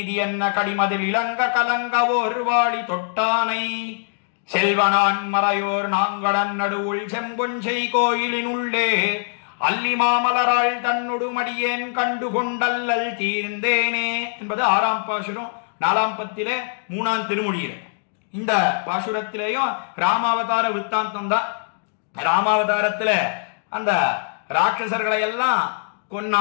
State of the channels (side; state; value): right; silent; digital silence